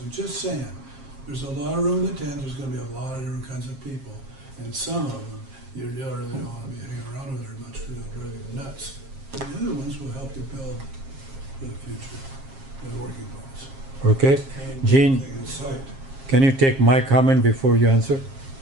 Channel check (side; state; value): left; late; 7.4 ms